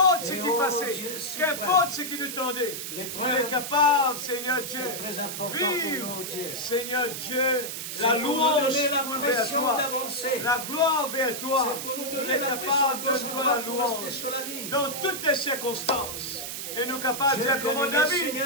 ce Et qui oh, passait, Dieu suprême. qu'importe ce qui nous tendait, L'épreuve, on est capable, Seigneur Dieu, c'est très important pour vivre, nous, Dieu. Seigneur Dieu, C'est la pour nous louange donner la vers pression toi, d'avancer. la gloire vers toi. C'est pour nous On donner est la pression capable de gauche toi la droite pour rester louange sur la ligne. dans toutes les circonstances. Et nous capables de Dieu dire comme bien-aimé, David, Seigneur,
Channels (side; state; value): right; noise; hiss, 6 dB below the sound